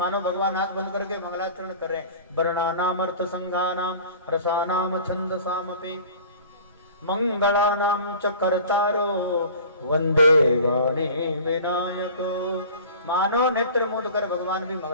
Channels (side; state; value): both; inverted; correlation -0.42